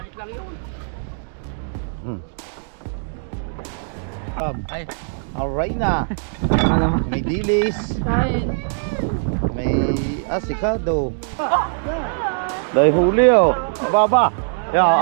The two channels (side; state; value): left; silent; digital silence